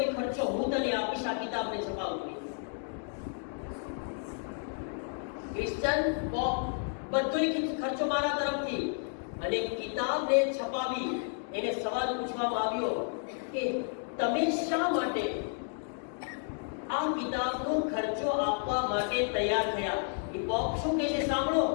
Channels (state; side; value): silent; right; 57 dB below the other